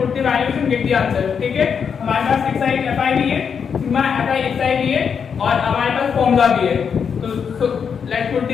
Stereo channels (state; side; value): quieter; right; 6.7 dB